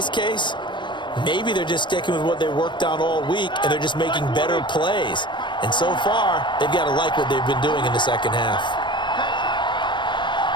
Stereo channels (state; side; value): late; right; 0.22 ms